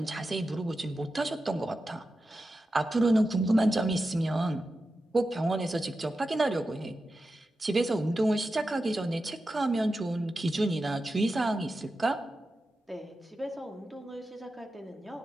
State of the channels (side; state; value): both; normal; correlation 0.91